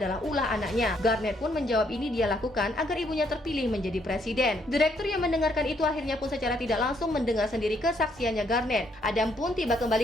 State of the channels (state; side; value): normal; both; correlation 0.71